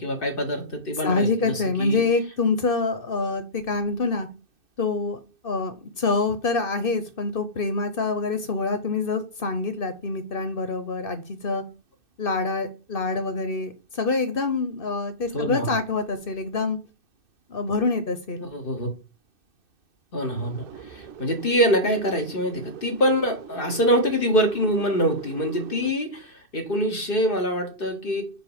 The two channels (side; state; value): right; late; 2.6 ms